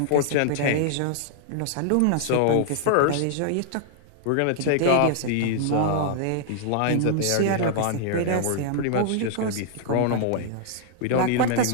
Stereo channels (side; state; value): both; different; correlation -0.01